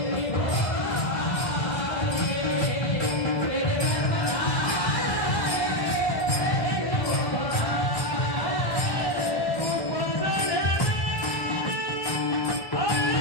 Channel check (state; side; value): late; right; 1.1 ms